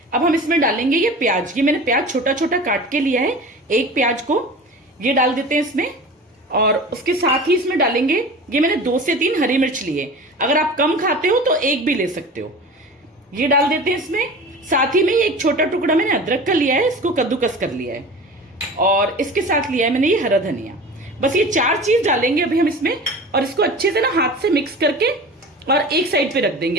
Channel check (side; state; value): both; normal; correlation 0.36